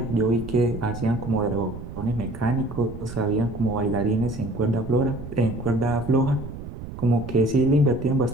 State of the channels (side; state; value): right; noise; rumble, 11 dB below the sound